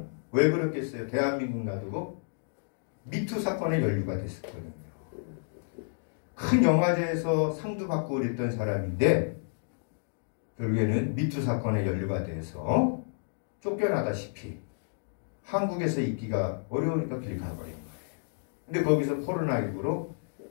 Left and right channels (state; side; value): silent; right; digital silence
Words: 왜 그렇겠어요? 대한민국 놔두고 미투 사건에 연루가 됐었거든요. 큰 영화제에서 상도 받고 그랬던 사람인데 결국에는 미투 사건에 연루가 돼서 쫓겨나다시피 한국에서 있기가 어려우니까 길이 가버린 거예요. 근데 거기서 코로나19로